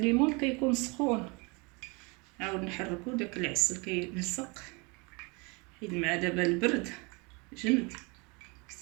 كيكون سخون، عاود نحركو داك العسل كيلصق حيت مع دابا البرد جمد.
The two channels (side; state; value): left; quieter; 29.3 dB